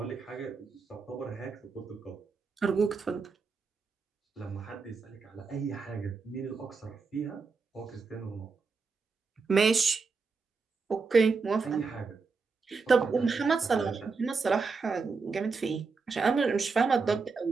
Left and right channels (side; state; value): left; quieter; 4.7 dB